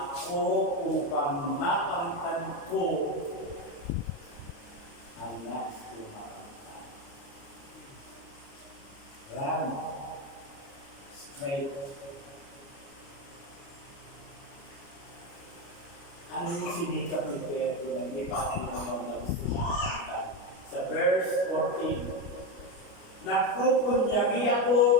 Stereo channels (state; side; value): late; right; 29 ms